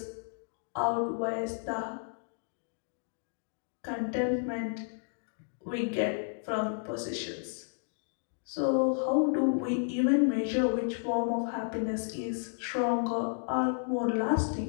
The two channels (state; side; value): silent; right; digital silence